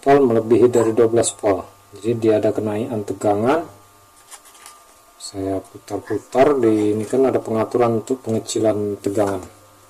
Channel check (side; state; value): both; identical; correlation 1.00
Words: melebihi dari 12 volt. Jadi dia ada kenaikan tegangan. Saya putar-putar di ini, kan ada pengaturan untuk pengecilan tegangan